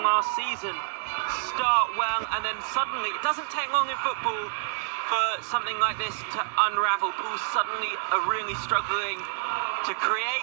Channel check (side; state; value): left; silent; digital silence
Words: season. Start well and then suddenly, it doesn't take long in football for something like this to unravel. Pools suddenly are really struggling to create,